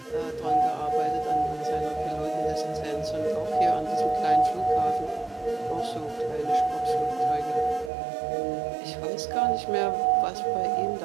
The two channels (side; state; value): left; drops out; at 7.9 s